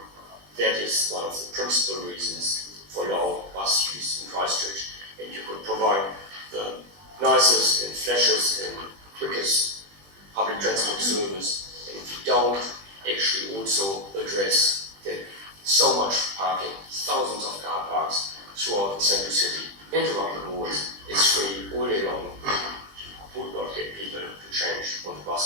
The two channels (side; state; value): left; late; 20 ms